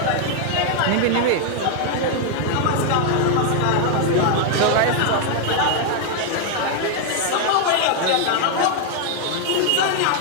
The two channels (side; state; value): both; different; correlation 0.00